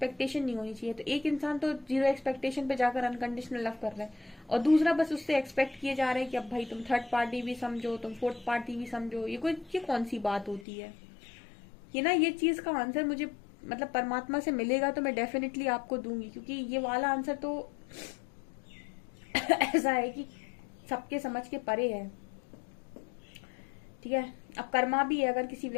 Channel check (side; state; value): right; drops out; at 10.7 s